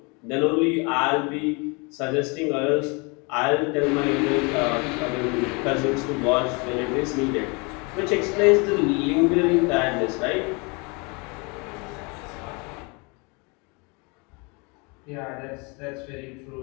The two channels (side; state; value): right; quieter; 30.2 dB